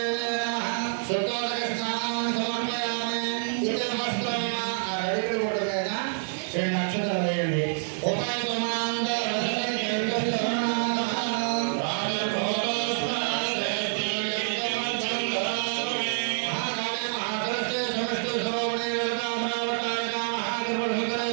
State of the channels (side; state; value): left; silent; digital silence